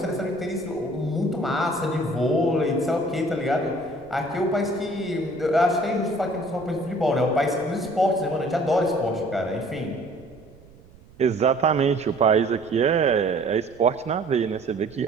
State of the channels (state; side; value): noise; right; rumble, 24 dB below the sound